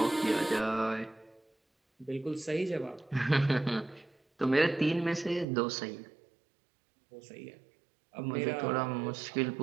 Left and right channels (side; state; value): left; drops out; at 5.5 s